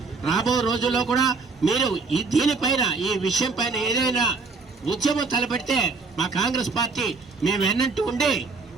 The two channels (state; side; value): quieter; left; 4.3 dB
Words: రాబో రోజుల్లో కూడా మీరు దీనిపైన ఈ విషయం పైన ఏదైనా ఉద్యమం తలపెడితే మా కాంగ్రెస్ పార్టీ మేము వెన్నంటూ ఉండి